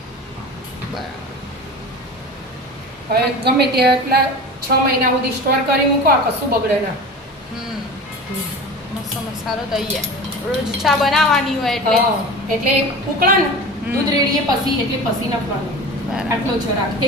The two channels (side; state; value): both; normal; correlation 0.34